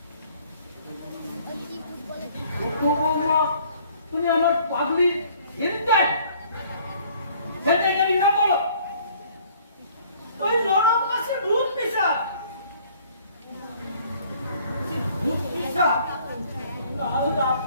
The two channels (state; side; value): inverted; both; correlation -0.57